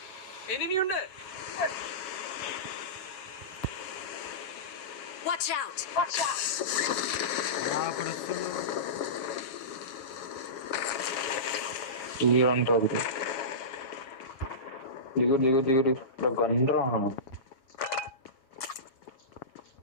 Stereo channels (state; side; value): late; right; 7.2 ms